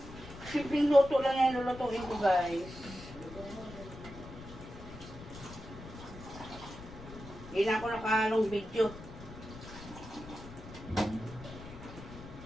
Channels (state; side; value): noise; left; rumble, 14 dB below the sound